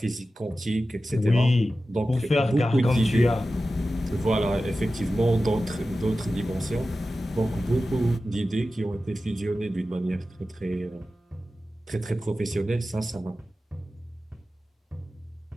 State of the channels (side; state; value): both; normal; correlation 0.94